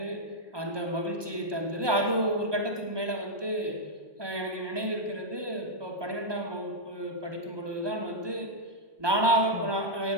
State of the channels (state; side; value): late; left; 1.2 ms